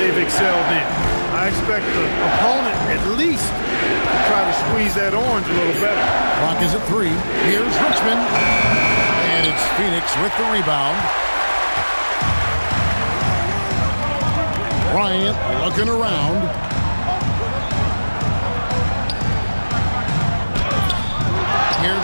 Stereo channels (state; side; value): inverted; both; correlation -1.00